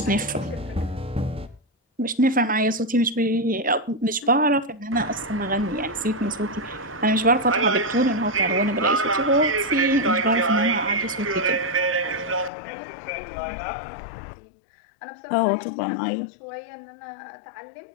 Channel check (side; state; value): right; drops out; at 12.5 s